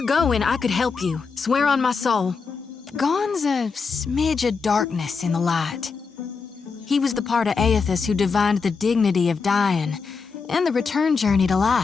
going, I could help you. Swear on my soul. Gon's a smidge of darkness in the light. He was the part of Aethys who divined the dignity of dying and the return journey to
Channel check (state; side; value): quieter; right; 5.1 dB